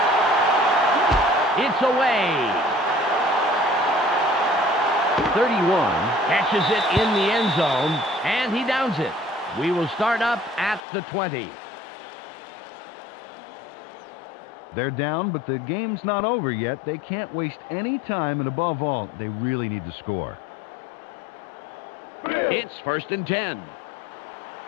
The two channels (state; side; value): drops out; right; at 10.9 s